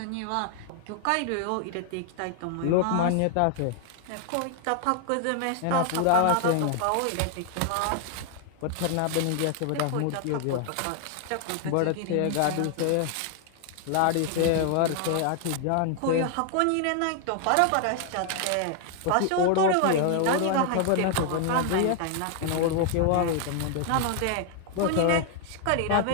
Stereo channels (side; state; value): both; different; correlation 0.00